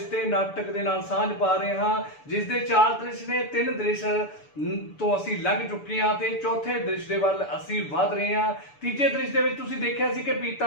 ਨਾਟਕ ਦੇ ਨਾਲ ਸਾਂਝ ਪਾ ਰਹੇ ਹਾਂ, ਜਿਸ ਦੇ 4 ਦ੍ਰਿਸ਼ ਨੇ। 3 ਦ੍ਰਿਸ਼ ਤੋਂ ਅਸੀਂ ਲੰਘ ਚੁੱਕੇ ਹਾਂ ਤੇ ਚੌਥੇ ਦ੍ਰਿਸ਼ ਦੇ ਵੱਲ ਅਸੀਂ ਵਧ ਰਹੇ ਹਾਂ। ਤੀਜੇ ਦ੍ਰਿਸ਼ ਦੇ ਵਿੱਚ ਤੁਸੀਂ ਦੇਖਿਆ ਸੀ ਕਿ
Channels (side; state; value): right; late; 6.9 ms